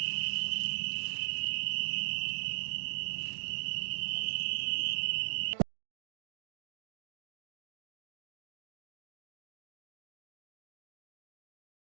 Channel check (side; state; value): left; silent; digital silence